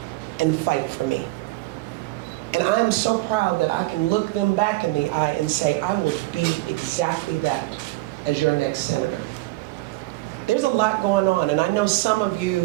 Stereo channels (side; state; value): left; quieter; 20.3 dB